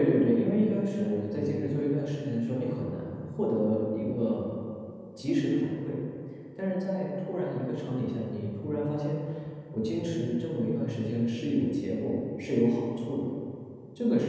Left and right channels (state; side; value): identical; both; correlation 1.00